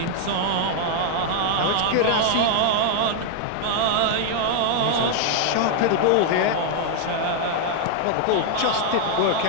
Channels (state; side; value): different; both; correlation 0.00